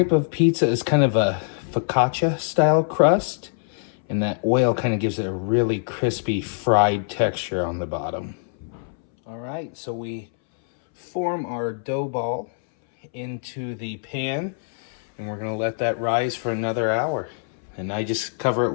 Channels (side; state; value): right; silent; 63 dB below the other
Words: of pizza is kind of a focaccia style crust, and that oil kind of gives it a really crispy fried texture on the bottom. All right, so we form our dough ball into the pan, and we're gonna let that rise for another hour. And I just cover it